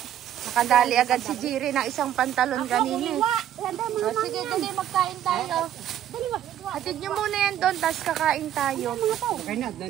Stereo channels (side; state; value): left; quieter; 11.3 dB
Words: Nakadali agad si Jiri ng isang pantalon kanina. O, sige, dali, magkain tayo. Hatid nyo muna yan doon, tapos kakain tayo. Kuha.